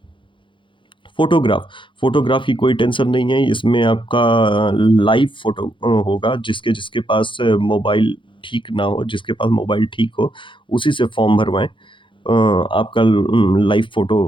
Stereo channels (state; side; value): late; right; 0.24 ms